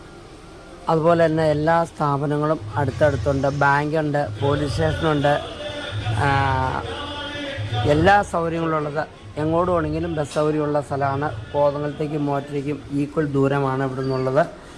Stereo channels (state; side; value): identical; both; correlation 1.00